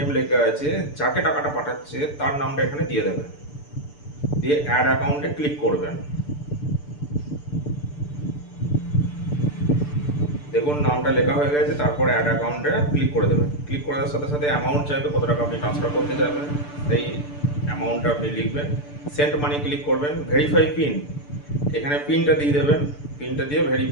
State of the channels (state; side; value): late; right; 6.8 ms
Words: লেখা আছে, যাকে টাকাটা পাঠাচ্ছে তার নামটা এখানে দিয়ে দেবেন, দিয়ে অ্যাড অ্যাকাউন্টে ক্লিক করবেন। দেখুন নামটা লেখা হয়ে গেছে, তারপরে অ্যাড অ্যাকাউন্টে ক্লিক করে দেবেন। ক্লিক করার সাথে সাথে অ্যামাউন্ট চাইবে, কত টাকা আপনি ট্রান্সফার করতে চাইবেন সেই অ্যামাউন্টটা আপনি লিখবেন। সেন্ড মানি ক্লিক করবেন। ভেরিফাই পিন, এখানে পিনটা দিয়ে দেবেন, পিনটা দিয়ে